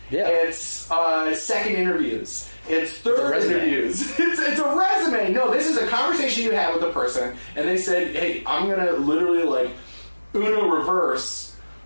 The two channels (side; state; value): both; inverted; correlation -1.00